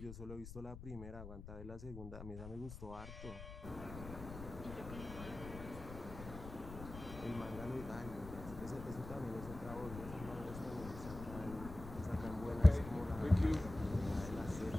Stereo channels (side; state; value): left; noise; rumble, 11 dB below the sound